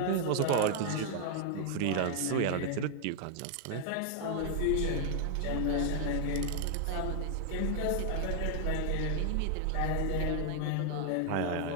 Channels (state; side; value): different; both; correlation 0.00